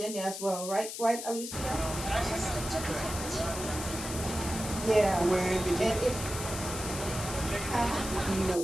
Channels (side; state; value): left; noise; hiss, 7 dB below the sound